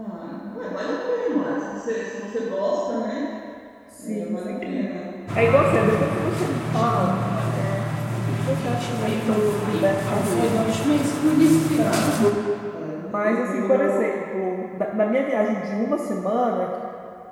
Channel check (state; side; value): identical; both; correlation 1.00